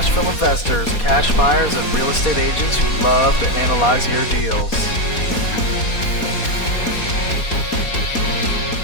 investors, cash buyers, and real estate agents who love to analyze your deals.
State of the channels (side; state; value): right; late; 4.2 ms